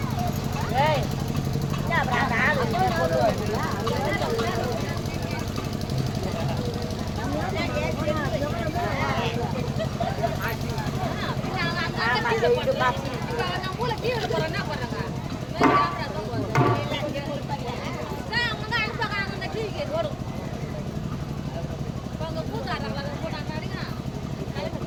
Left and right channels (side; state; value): both; identical; correlation 1.00